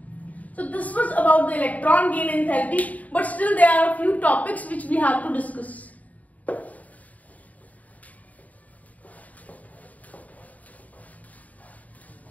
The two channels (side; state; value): right; late; 0.072 ms